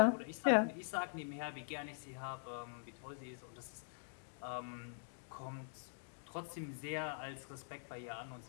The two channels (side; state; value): right; silent; digital silence